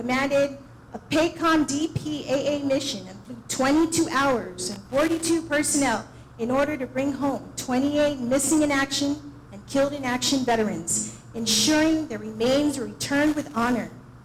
a PACOM DPAA mission and flew 22 hours and 42 personnel in order to bring home 28 missing in action and killed in action veterans, ensuring their remains were returned with honor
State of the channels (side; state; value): both; identical; correlation 1.00